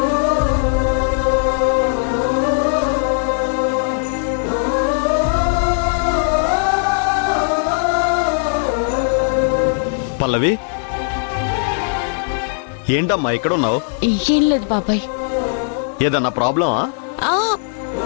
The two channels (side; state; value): right; silent; digital silence